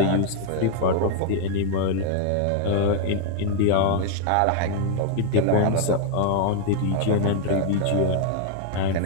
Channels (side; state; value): both; different; correlation 0.00